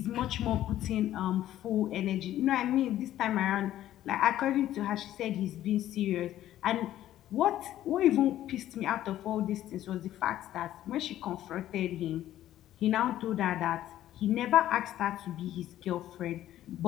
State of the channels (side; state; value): right; quieter; 12.9 dB